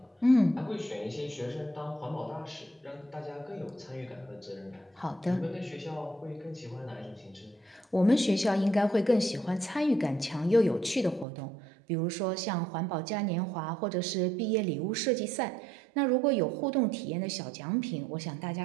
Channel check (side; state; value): left; drops out; at 11.2 s